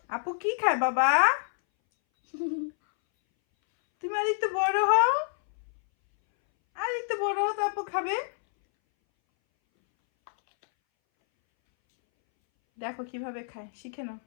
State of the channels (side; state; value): right; silent; 60 dB below the other